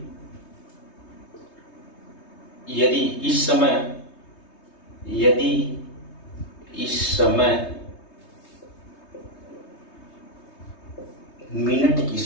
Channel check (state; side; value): late; right; 3.2 ms